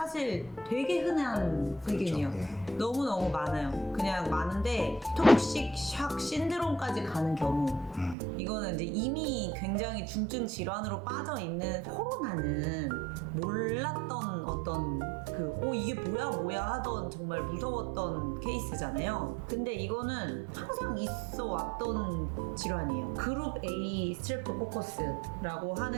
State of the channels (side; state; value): left; drops out; at 8.2 s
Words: 되게 흔한 세균이에요. 그렇죠. 예. 너무너무 많아요. 그냥 많은데 톡식쇼크 신드롬까지 가는 경우, 이거는 이제 이미 굉장히 중증 질환으로 빠져 있는 코로나는 몰랐던 어떤 이게 뭐야 하던 정말 무서웠던 케이스잖아요. 근데 이거는 항상 있어 왔던 질환이에요. 그룹 A 스트랩토코커스라고